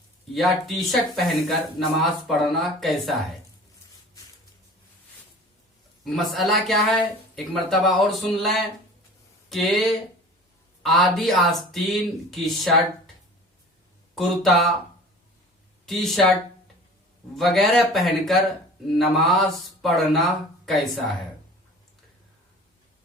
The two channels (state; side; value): normal; both; correlation 0.43